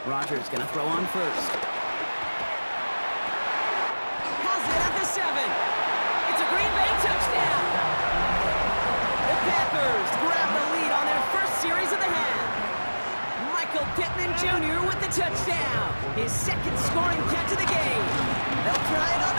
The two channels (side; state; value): both; inverted; correlation -1.00